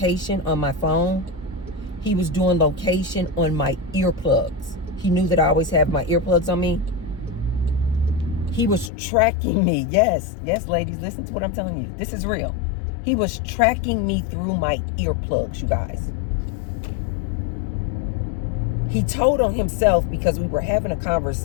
on my phone. He was doing location on my earplugs. He knew that I always have my earplugs on me. He was tracking me. Yes, ladies, listen to what I'm telling you. This is real. He was tracking me through my earplugs, you guys. He told on himself because we were having a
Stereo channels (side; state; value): right; drops out; at 8.9 s